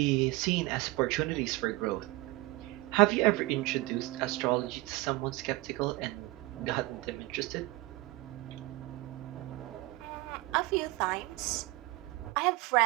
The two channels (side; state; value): left; quieter; 20.5 dB